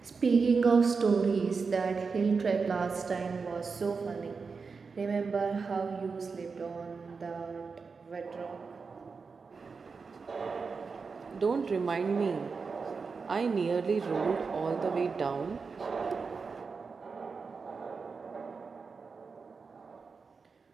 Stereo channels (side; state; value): left; quieter; 4.9 dB